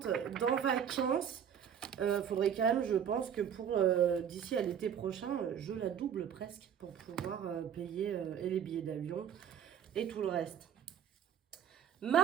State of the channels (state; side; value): quieter; left; 8.6 dB